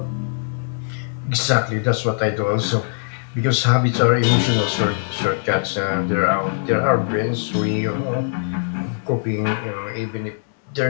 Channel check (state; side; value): silent; right; digital silence